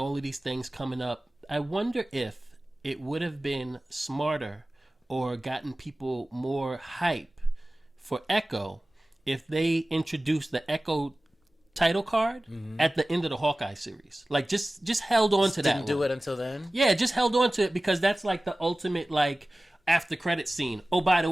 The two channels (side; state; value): both; normal; correlation 0.97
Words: of these things coming up. I wonder if it would have been smarter or gotten people more hype for Echo if they introduced the Echo title card at the end of the Hawkeye series. Like just held on to that. Didn't do it until then? Yeah, just held on to it because that's like the ultimate after credit scene. Oh, by the